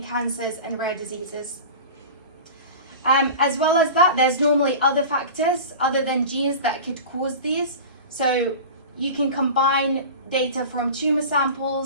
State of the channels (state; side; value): inverted; both; correlation -0.34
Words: cancers and rare diseases. As well as that, there's normally other factors other than genes that could cause these. So you can combine data from tumor